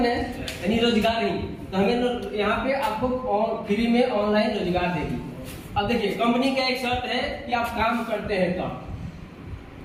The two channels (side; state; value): both; identical; correlation 1.00